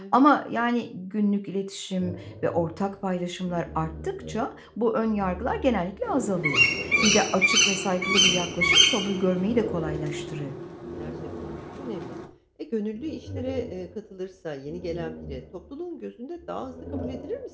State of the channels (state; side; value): identical; both; correlation 1.00